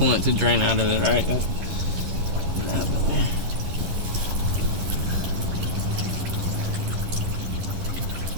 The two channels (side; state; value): left; late; 11 ms